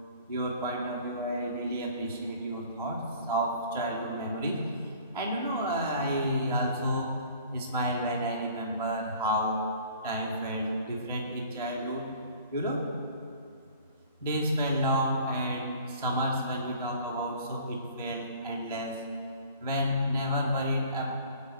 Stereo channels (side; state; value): both; inverted; correlation -0.49